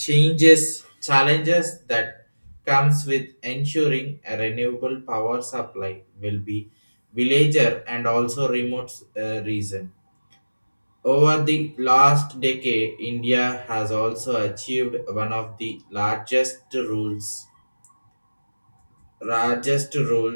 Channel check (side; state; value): both; inverted; correlation -1.00